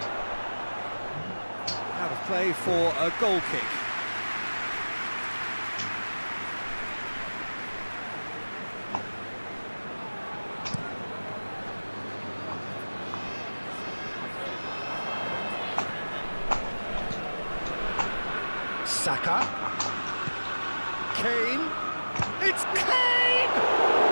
Out of play for a goal kick. Saka. Kane. It's Kane!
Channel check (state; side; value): inverted; both; correlation -1.00